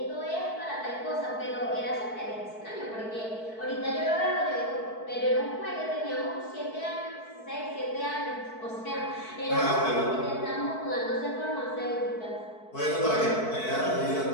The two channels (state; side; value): late; right; 4.6 ms